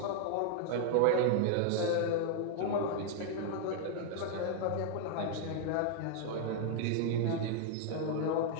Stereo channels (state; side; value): different; both; correlation -0.01